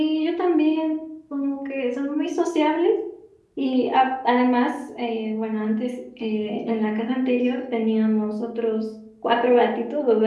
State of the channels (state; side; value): identical; both; correlation 1.00